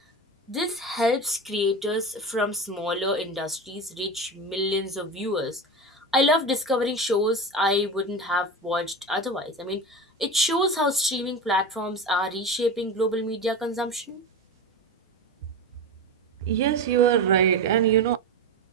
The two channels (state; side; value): normal; both; correlation 0.25